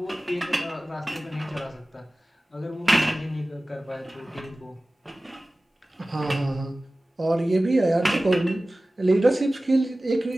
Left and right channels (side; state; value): both; normal; correlation 0.97